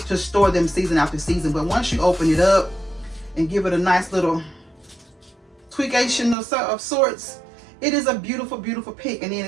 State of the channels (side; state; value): left; drops out; at 6.4 s